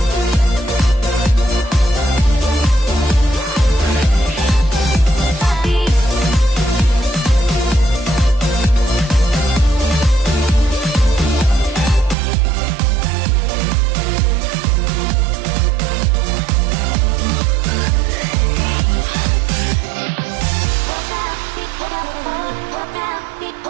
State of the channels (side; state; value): left; drops out; at 12.2 s